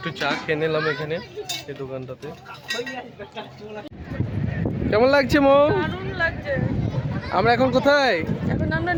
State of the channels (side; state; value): both; identical; correlation 1.00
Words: চা খেয়ে নিলাম এখানে এই দোকানটাতে। কেমন লাগছে মো? দারুণ লাগছে। আমরা এখন কোথায়? এখন আমরা